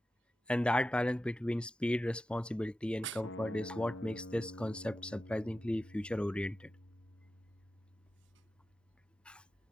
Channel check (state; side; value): normal; both; correlation 0.92